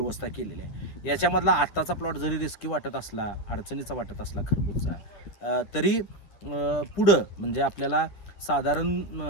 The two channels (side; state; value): right; late; 9.8 ms